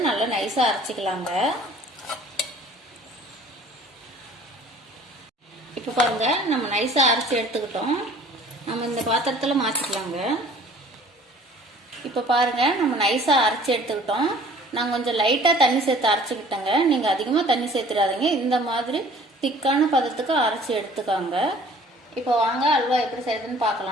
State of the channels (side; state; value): both; normal; correlation 0.51